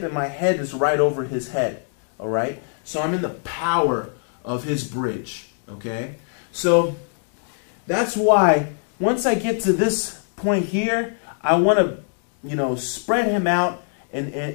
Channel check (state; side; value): silent; right; 61 dB below the other